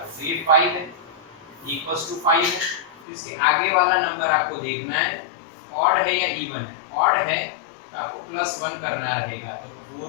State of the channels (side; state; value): right; drops out; at 3.1 s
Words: हो तो ये 5 है, इक्वल्स टू 5 है। तो इसके आगे वाला नंबर आपको देखना है ऑड है या इवन है। ऑड है तो आपको +1 करना रहेगा, तो